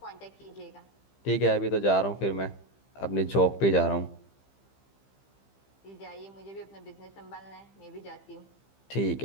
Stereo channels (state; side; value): late; right; 15 ms